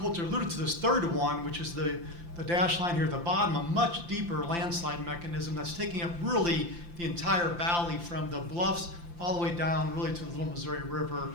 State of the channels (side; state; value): left; late; 5.8 ms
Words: alluded to this third one, which is the dash line here at the bottom, a much deeper landslide mechanism that's taking up really the entire valley from the bluffs all the way down really to the Little Missouri River.